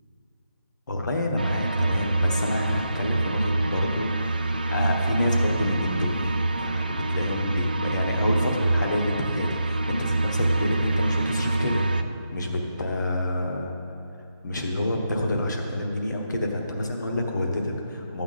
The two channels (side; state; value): both; inverted; correlation -0.83